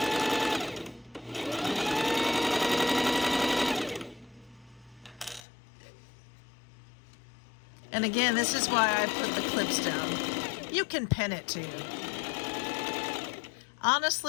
And again, this is why I put the clips down. You can pin it too.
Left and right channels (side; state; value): right; drops out; at 5.4 s